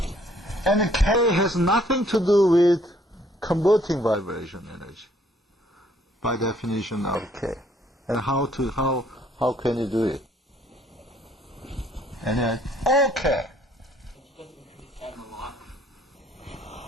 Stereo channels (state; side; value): normal; both; correlation 0.63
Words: And K has nothing to do with converting vibration energy, by definition of K. And how can you do it? And then, okay.